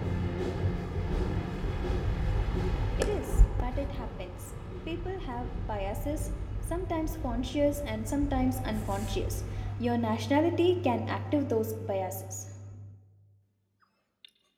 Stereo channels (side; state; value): both; identical; correlation 1.00